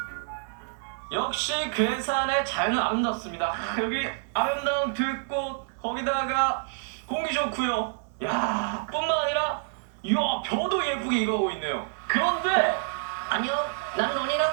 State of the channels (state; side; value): silent; left; 60 dB below the other